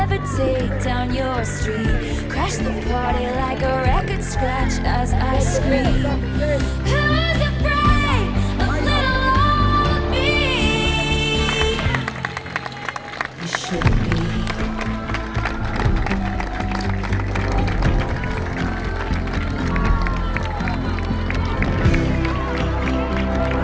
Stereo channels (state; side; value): identical; both; correlation 1.00